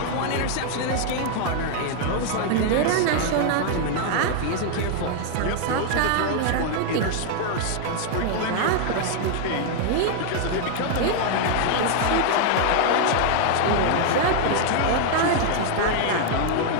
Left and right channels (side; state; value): both; different; correlation 0.00